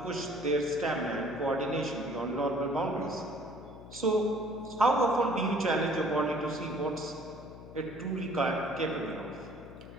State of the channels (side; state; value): left; noise; hum, 15 dB below the sound